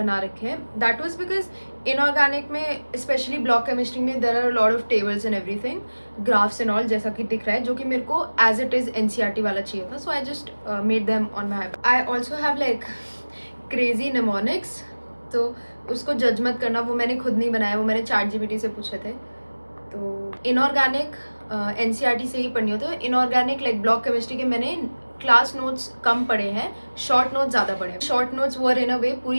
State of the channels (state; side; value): inverted; both; correlation -1.00